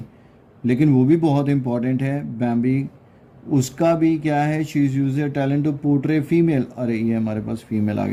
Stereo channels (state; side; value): identical; both; correlation 1.00